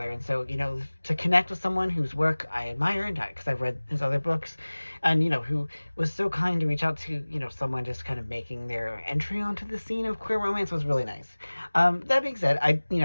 And so, to connect with someone whose work I admire, and because I've read his other books, and who was so kind to reach out to someone just kind of making their entry onto the scene of queer romance was really nice. That being said, I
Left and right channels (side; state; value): both; inverted; correlation -1.00